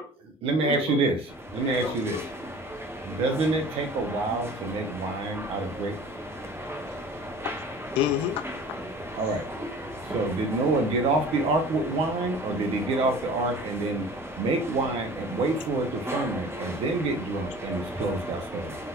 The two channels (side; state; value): both; normal; correlation 0.43